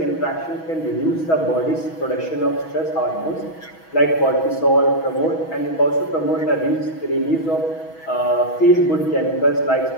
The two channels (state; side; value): late; right; 6.2 ms